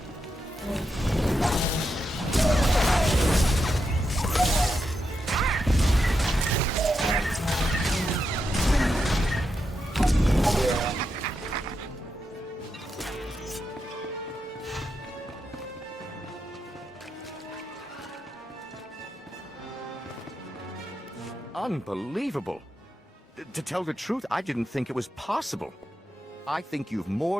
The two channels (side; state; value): both; normal; correlation 0.85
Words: Unbelievable. To tell the truth, I didn't think it was possible. I think you've